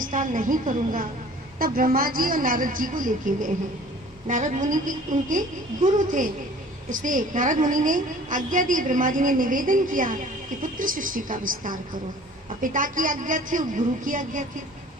नहीं करूंगा। तब ब्रह्मा जी और नारद जी को लेके गए हैं। नारद मुनि की उनके गुरु थे, इसलिए नारद मुनि ने आज्ञा दी, ब्रह्मा जी ने निवेदन किया कि पुत्र सृष्टि का विस्तार करो। और पिता की आज्ञा थी और गुरु की आज्ञा थी,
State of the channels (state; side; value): normal; both; correlation 0.49